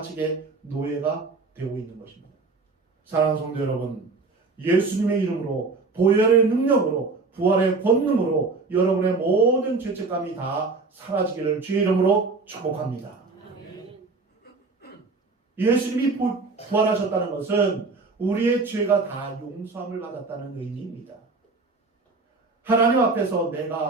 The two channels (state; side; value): quieter; left; 4.0 dB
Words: 노예가 되고 있는 것입니다. 사랑하는 성도 여러분, 예수님의 이름으로, 보혈의 능력으로, 부활의 권능으로 여러분의 모든 죄책감이 다 사라지기를 주의 이름으로 축복합니다. 예수님이 부활하셨다는 것은 우리의 죄가 다 용서함을 받았다는 의미입니다. 하나님 앞에서